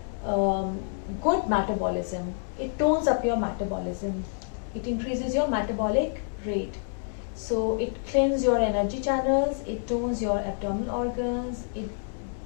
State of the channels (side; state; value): right; silent; digital silence